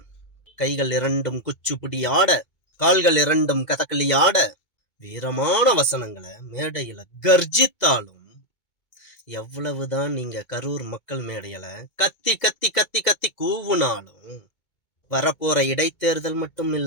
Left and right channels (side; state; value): right; late; 2.2 ms